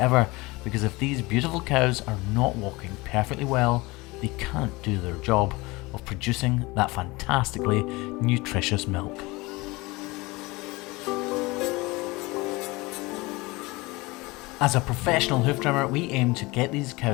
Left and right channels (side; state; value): right; quieter; 23.1 dB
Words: because if these beautiful cows are not walking perfectly well, they can't do their job of producing that fantastically nutritious milk. As a professional hoof trimmer, we aim to get these